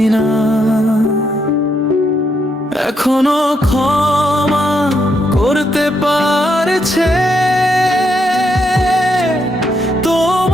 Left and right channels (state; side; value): normal; both; correlation 0.78